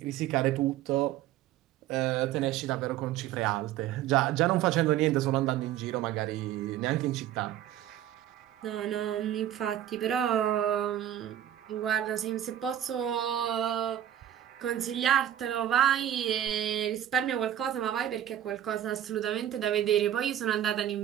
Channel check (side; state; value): left; quieter; 11.5 dB